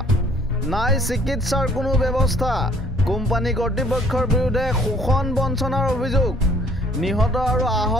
নাই চিকিৎসাৰ কোনো ব্যৱস্থা কোম্পানী কৰ্তৃপক্ষৰ বিৰুদ্ধে শোষণ বঞ্চনাৰ অভিযোগ নিহত আৰু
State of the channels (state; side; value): normal; both; correlation 0.58